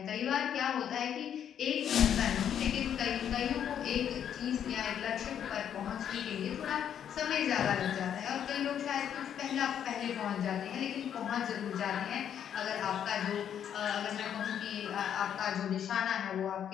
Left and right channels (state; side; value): quieter; right; 9.2 dB